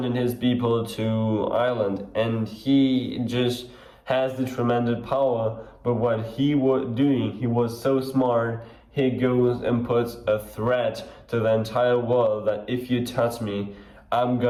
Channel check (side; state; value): both; identical; correlation 1.00